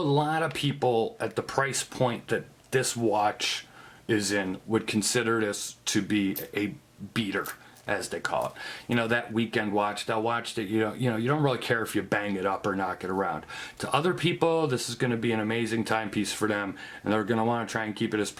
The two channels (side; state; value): both; identical; correlation 1.00